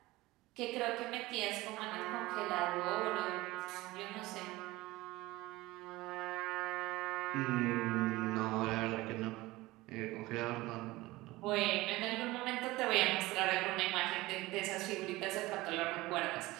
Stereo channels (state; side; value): quieter; left; 19.5 dB